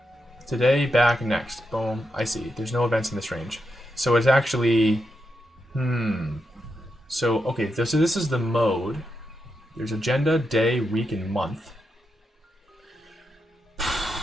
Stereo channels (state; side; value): normal; both; correlation 0.85